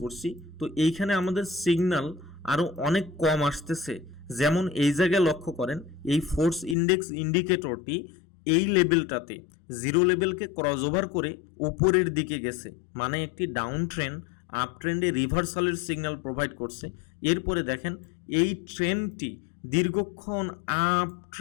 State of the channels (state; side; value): drops out; right; at 6.8 s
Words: করছি, তো এইখানে আমাদের সিগন্যাল আরও অনেক কম আসতেছে। যেমন এই জায়গায় লক্ষ্য করেন, এই ফোর্স ইন্ডেক্স ইন্ডিকেটরটি এই লেভেলটাতে জিরো লেভেলকে ক্রস ওভার করে উপরের দিকে গেছে, মানে একটি ডাউন ট্রেন্ড আপ ট্রেন্ডে রিভার্সালের সিগন্যাল প্রোভাইড করছে। এরপরে দেখেন এই ট্রেন্ডটি দীর্ঘক্ষণ আপ